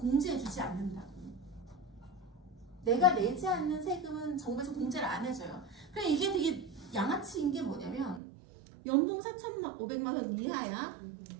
않는다고. 내가 내지 않는 세금은 정부에서 공제를 안 해줘요. 그래 이게 되게 양아치인 게 뭐냐면 연봉 4,500만 원 이하야.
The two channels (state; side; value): drops out; left; at 8.2 s